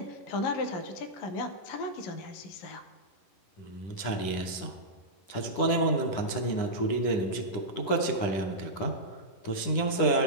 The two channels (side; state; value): right; late; 10 ms